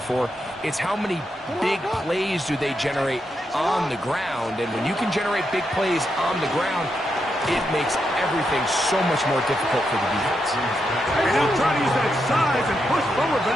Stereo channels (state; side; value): normal; both; correlation 0.83